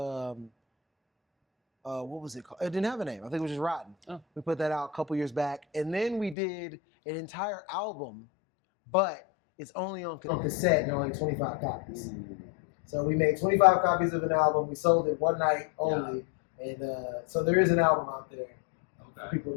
what was it called? It didn't have a name. I think it was just Rotten. Oh. We put that out a couple years back. And then we did an entire album, but it's only on cassette and only 25 copies. So we made 25 copies of an album. We sold it one night only. Yeah. And so there is an album out there for people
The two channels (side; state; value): right; drops out; at 6.4 s